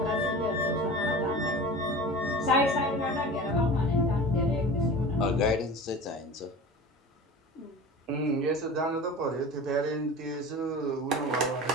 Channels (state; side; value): normal; both; correlation 0.35